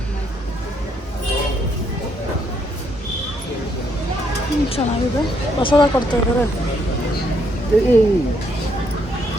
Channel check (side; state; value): both; normal; correlation 0.72